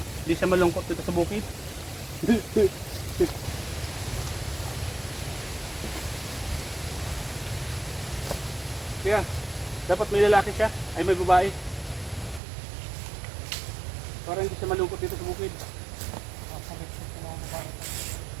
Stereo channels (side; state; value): left; drops out; at 12.4 s